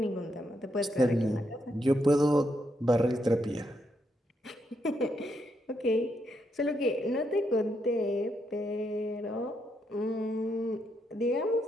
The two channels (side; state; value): both; normal; correlation 0.79